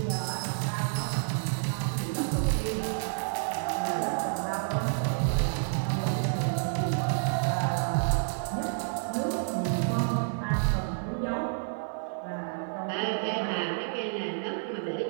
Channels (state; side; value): silent; left; 58 dB below the other